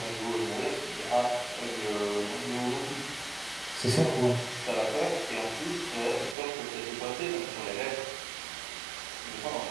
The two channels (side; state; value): left; drops out; at 6.4 s